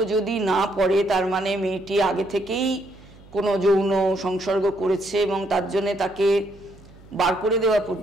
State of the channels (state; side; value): noise; right; hum, 23 dB below the sound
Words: যদি না পড়ে তার মানে মেয়েটি আগে থেকেই কোনো যৌন সংসর্গ করেছে এবং তার জন্যে তাকে বার করে দেওয়া